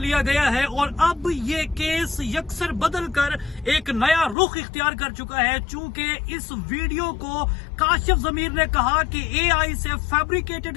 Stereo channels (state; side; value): drops out; right; at 4.4 s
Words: गया है और अब ये केस यकसर बदल कर एक नया रुख इख्तियार कर चुका है। चूंकि इस वीडियो को काशिफ जमीर ने कहा कि एआई से फैब्रिकेटेड